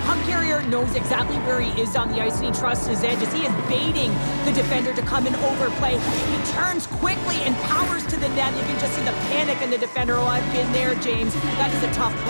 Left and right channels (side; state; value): both; inverted; correlation -1.00